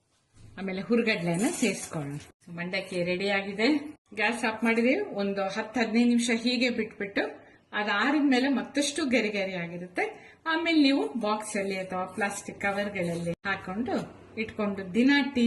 ಆಮೇಲೆ ಹುರಿಗಡ್ಲೆನ ಸೇರಿಸ್ಕೊಳ್ಳೋಣ. ಮಂಡಕ್ಕಿ ರೆಡಿ ಆಗಿದೆ. ಗ್ಯಾಸ್ ಆಫ್ ಮಾಡಿದೀವಿ. ಒಂದು 10-15 ನಿಮಿಷ ಹೀಗೆ ಬಿಟ್ಬಿಟ್ಟು ಅದಾರಿದ್ಮೇಲೆ ಮತ್ತಷ್ಟು ಗರಿ ಗರಿ ಆಗಿರುತ್ತೆ. ಆಮೇಲೆ ನೀವು ಬಾಕ್ಸ್ ಅಲ್ಲಿ ಅಥವಾ ಪ್ಲಾಸ್ಟಿಕ್ ಕವರ್ಗಳಲ್ಲಿ ಹಾಕೊಂಡು ಇಟ್ಕೊಂಡು ದಿನ ಟೀ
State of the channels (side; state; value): both; identical; correlation 1.00